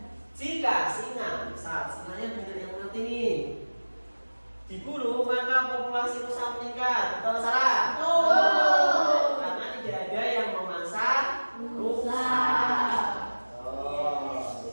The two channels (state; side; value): inverted; both; correlation -1.00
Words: Jika singa, misal singanya banyak yang mati nih, diburu maka populasi rusa meningkat. Betul salah? Karena tidak ada yang memangsa rusa.